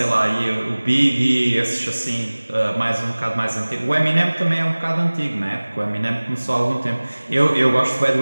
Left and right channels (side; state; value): both; inverted; correlation -1.00